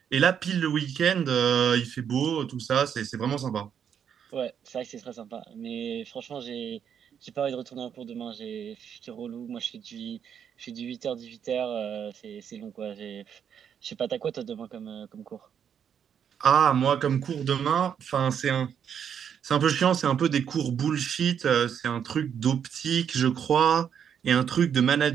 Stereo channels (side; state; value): left; quieter; 8.2 dB